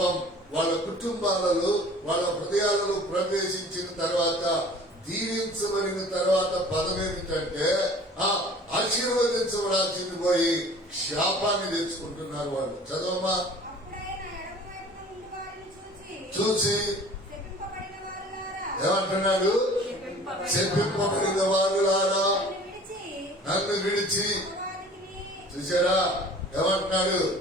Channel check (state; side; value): normal; both; correlation 0.47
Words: వాళ్ళ కుటుంబాలలో, వాళ్ళ హృదయాలలో ప్రవేశించిన తర్వాత, దీవించబడిన తర్వాత పదం ఏమిటంటే ఆశీర్వదించబడాల్సింది పోయి శాపాన్ని తెచ్చుకుంటున్నారు వాళ్ళు. చదవమా. చూసి ఏమంటున్నాడు? చెప్పింపబడిన వారులారా నన్ను విడిచి. చూసారా ఏమంటున్నాడు?